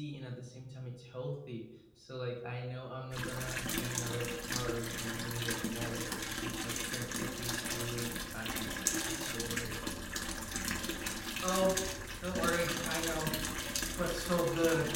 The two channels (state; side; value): identical; both; correlation 1.00